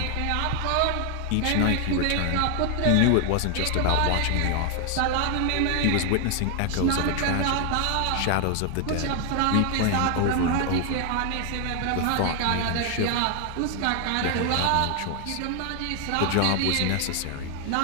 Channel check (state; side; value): different; both; correlation 0.00